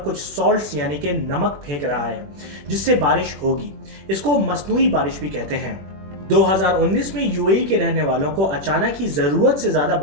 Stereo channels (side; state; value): left; late; 21 ms